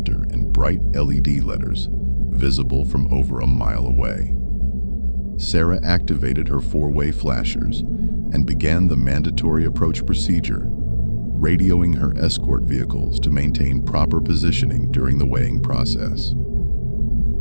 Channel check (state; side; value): inverted; both; correlation -1.00